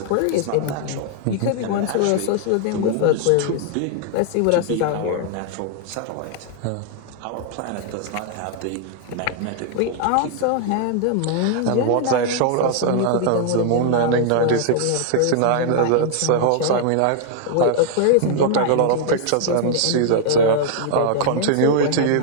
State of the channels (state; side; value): different; both; correlation 0.00